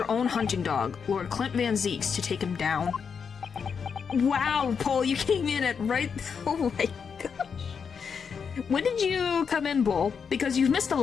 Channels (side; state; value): right; quieter; 6.3 dB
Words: own hunting dog, Lord Clint Van Zieks, to take him down. Wow, Paul, you came in at right... Oh my gosh. When did you come in, Bull? Because you've missed a